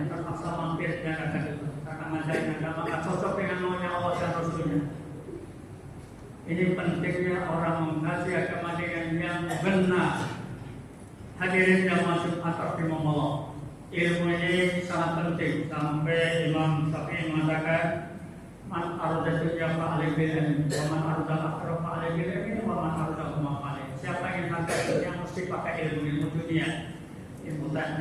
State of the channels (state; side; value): identical; both; correlation 1.00